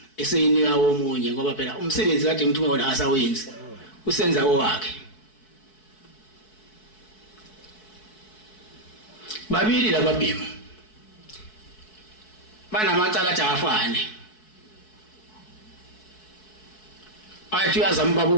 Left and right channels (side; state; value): right; late; 4.6 ms